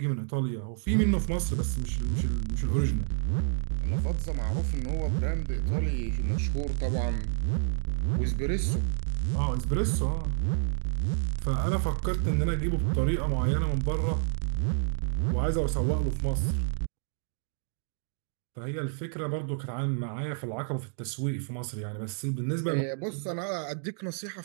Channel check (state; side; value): silent; left; digital silence